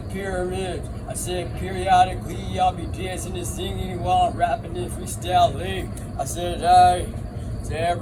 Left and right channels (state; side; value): identical; both; correlation 1.00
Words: pyramid. I said periodically I'll be dancing and singing while I'm rapping and freestyling. I said, hey, to